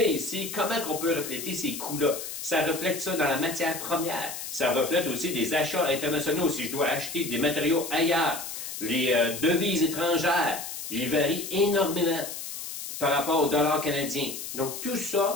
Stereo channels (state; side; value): noise; left; hiss, 8 dB below the sound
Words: ici, comment on peut refléter ces coûts-là? Ça reflète ça dans la matière première. Ça reflète aussi des achats internationaux. Si je dois acheter des matériaux ailleurs, les devises étrangères, ils varient énormément par rapport au dollar canadien. Donc, tout